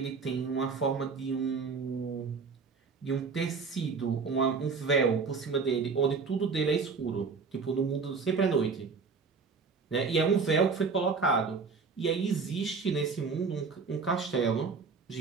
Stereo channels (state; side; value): quieter; left; 5.0 dB